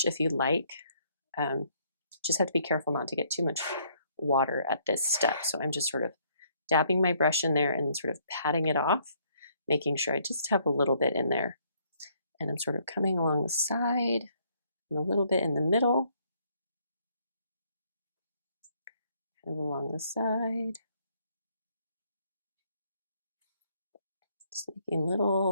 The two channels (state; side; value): inverted; both; correlation -0.67